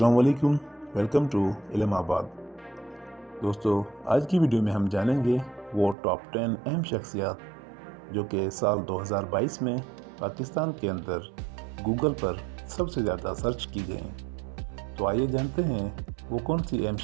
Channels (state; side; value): drops out; left; at 6.0 s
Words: वालेकुम, welcome to इल्माबाद। दोस्तों, आज की वीडियो में हम जानेंगे वो टॉप 10 अहम शख्सियात जो कि साल 2022 में पाकिस्तान के अंदर गूगल पर सबसे ज़्यादा सर्च की गई। तो आइए जानते हैं वो कौन सी अहम